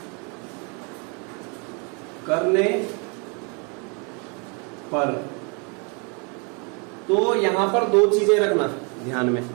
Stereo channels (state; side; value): quieter; left; 34.4 dB